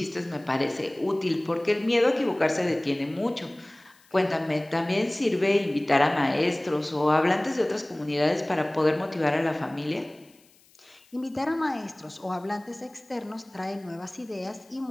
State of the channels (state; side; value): noise; left; hiss, 30 dB below the sound